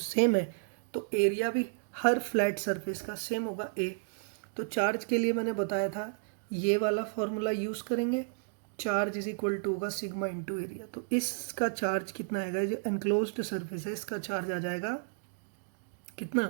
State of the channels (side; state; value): left; silent; digital silence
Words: है, तो एरिया भी हर फ्लैट सरफेस का सेम होगा ए। तो चार्ज के लिए मैंने बताया था ये वाला फॉर्मूला यूज करेंगे, चार्ज इज इक्वल टू होगा सिग्मा इंटू एरिया। तो इसका चार्ज कितना आएगा, जो एनक्लोज्ड सरफेस है इसका चार्ज आ जाएगा